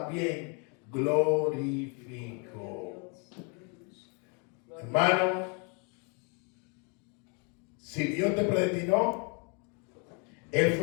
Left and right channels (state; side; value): quieter; right; 35.0 dB